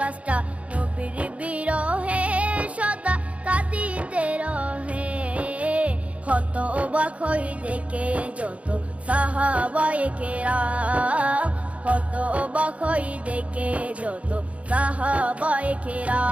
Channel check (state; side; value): late; left; 0.064 ms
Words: নবীর বিরহে সদা কাঁদিতে রহে। হতবাক হই দেখে যত সাহাবায়ে কেরাম, হতবাক হই দেখে যত সাহাবায়ে